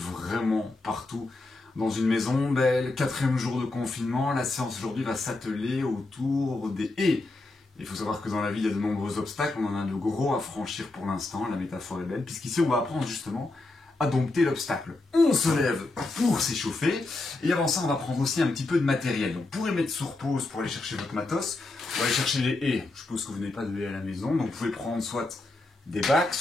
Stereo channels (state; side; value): quieter; right; 3.1 dB